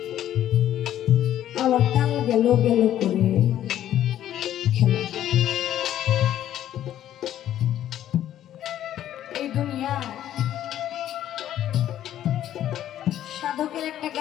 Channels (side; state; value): right; quieter; 11.8 dB